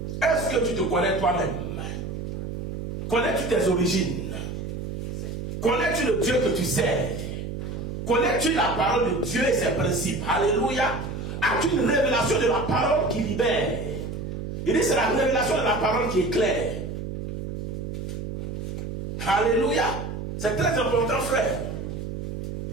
Est-ce que tu te connais toi-même? Connais-tu tes origines? Connais-tu le Dieu que tu sers? Connais-tu la parole de Dieu et ses principes? Alléluia. As-tu une révélation de la parole qui libère? Il dit c'est la révélation de la parole qui qui éclaire. Alléluia. C'est très important, frère.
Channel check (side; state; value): right; noise; hum, 6 dB below the sound